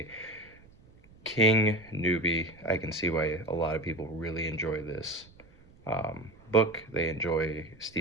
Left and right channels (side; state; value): right; noise; rumble, 26 dB below the sound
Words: King newbie, I can see why a lot of people really enjoy this book. They enjoy